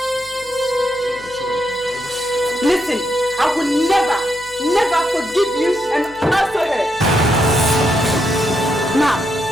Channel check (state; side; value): noise; left; hum, 23 dB below the sound